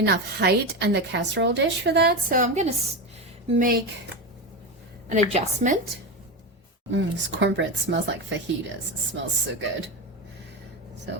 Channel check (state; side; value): normal; both; correlation 0.17